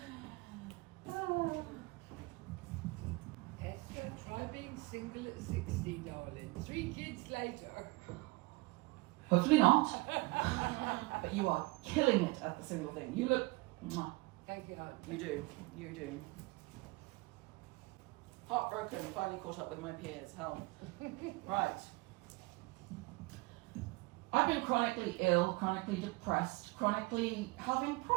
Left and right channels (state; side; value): quieter; left; 24.2 dB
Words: Esther, try being single at 60, darling. 3 kids later. Hopefully not. But you are killing it at the single thing. You look... Mwah. Thank you, hon. You do. You do. Heartbroken, finally caught up with my peers. Hell. Right. I've been chronically ill, chronically depressed, chronically having